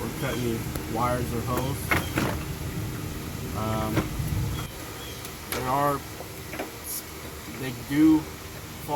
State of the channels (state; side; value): identical; both; correlation 1.00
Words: cut any wires or hose. They do